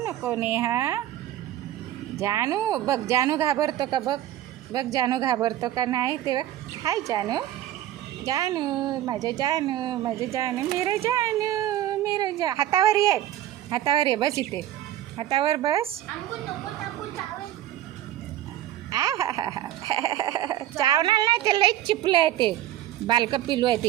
नेहा. जानू बघ, जानू घाबरतो का बघ जानू घाबरतो का नाही. ते बघ, हाय जानू माझं जानू मेरे जानू. हातावर ये बस, इथे हातावर बस. चावणार नाही, ते लई चिपलं आहे, ते बालकं पिलू आहे ते.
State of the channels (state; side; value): quieter; left; 12.8 dB